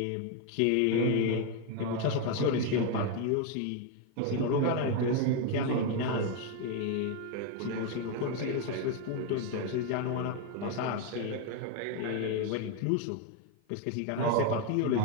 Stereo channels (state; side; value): different; both; correlation 0.01